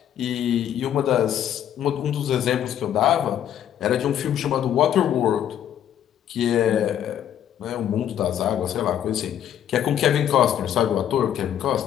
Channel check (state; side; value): quieter; right; 10.3 dB